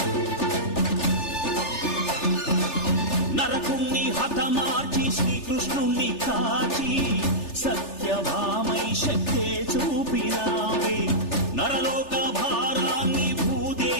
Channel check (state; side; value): late; right; 3.4 ms